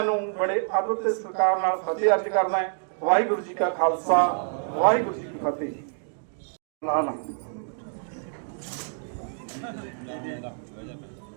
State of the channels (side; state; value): left; silent; digital silence